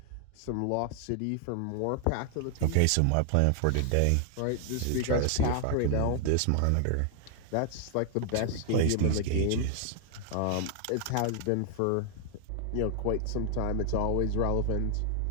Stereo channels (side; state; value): both; different; correlation 0.00